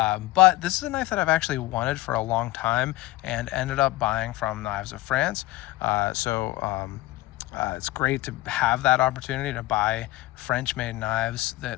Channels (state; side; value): quieter; right; 17.9 dB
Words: this is a knife that I've actually wanted for a long time and ended up buying from Knives of France. It's great to have that opportunity to buy French-made knives